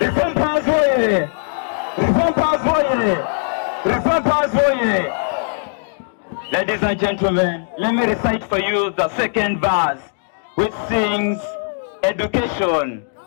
Powers Warrior! Reform Powers Warrior! Reform Powers Warrior! Ladies and gentlemen, let me recite for you the second verse, which sings education,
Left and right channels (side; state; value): right; silent; digital silence